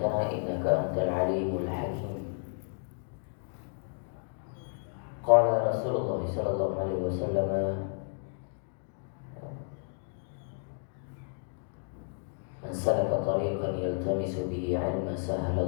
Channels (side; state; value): right; silent; 56 dB below the other